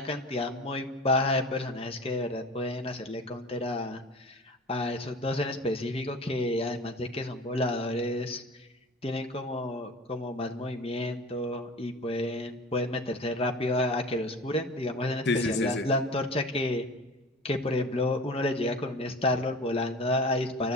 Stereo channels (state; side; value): normal; both; correlation 0.37